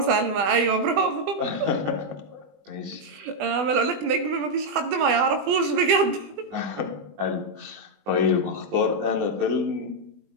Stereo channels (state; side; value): late; left; 20 ms